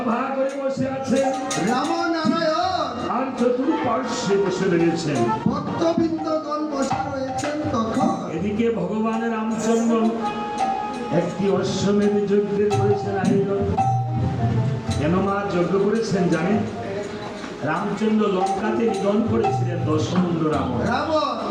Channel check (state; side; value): identical; both; correlation 1.00